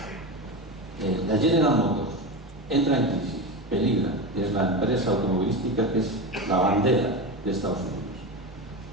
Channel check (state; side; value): normal; both; correlation 0.21